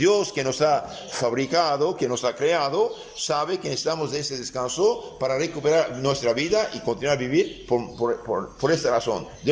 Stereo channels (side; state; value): both; identical; correlation 1.00